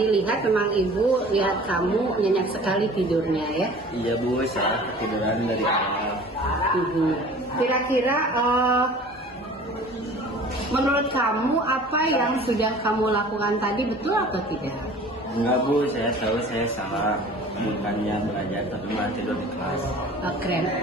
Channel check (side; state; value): both; normal; correlation 0.45